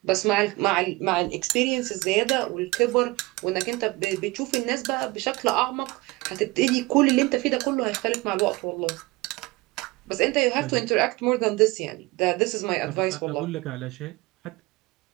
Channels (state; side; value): quieter; left; 22.4 dB